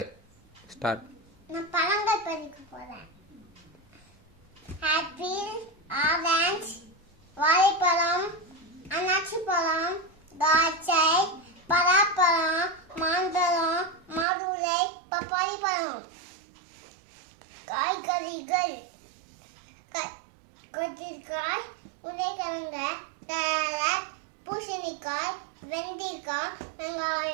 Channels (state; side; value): drops out; left; at 14.2 s